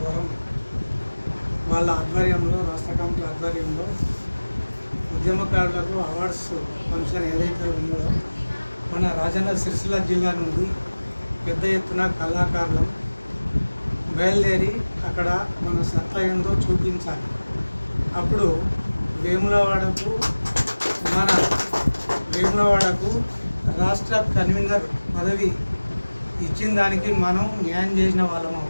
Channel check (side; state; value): both; inverted; correlation -1.00